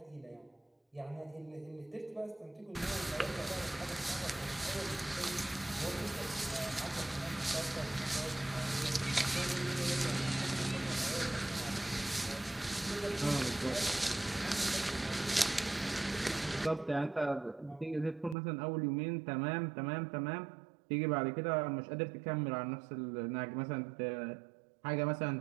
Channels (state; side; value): drops out; left; at 18.4 s